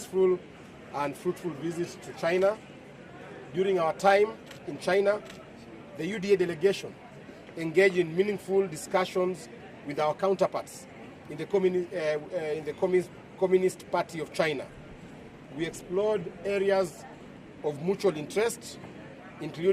and fruitful visit to China. During our time in China, the UDA delegation engaged in meaningful discussions with our counterparts in the Communist Party of China. We explored areas of mutual interest,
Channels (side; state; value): both; identical; correlation 1.00